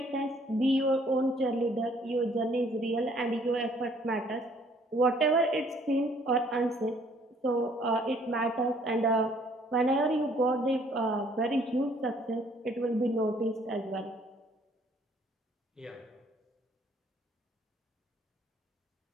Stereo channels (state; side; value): normal; both; correlation 0.61